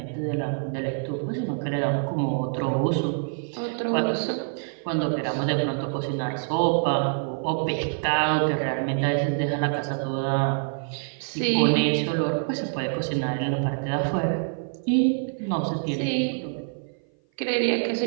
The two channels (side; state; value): left; silent; 56 dB below the other